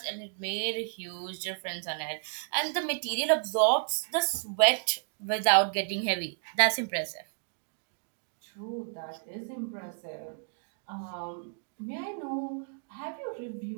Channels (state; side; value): silent; left; 57 dB below the other